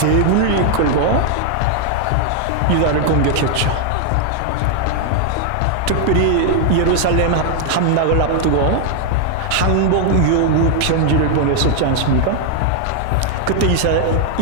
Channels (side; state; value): both; different; correlation 0.00